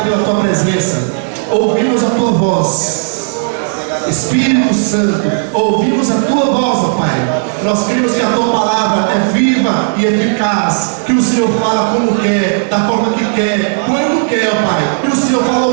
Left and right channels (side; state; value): left; silent; digital silence